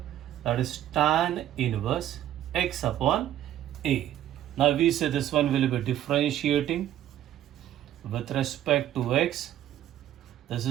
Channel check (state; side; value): quieter; left; 12.2 dB